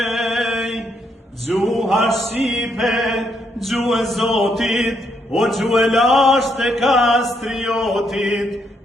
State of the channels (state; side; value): normal; both; correlation 0.75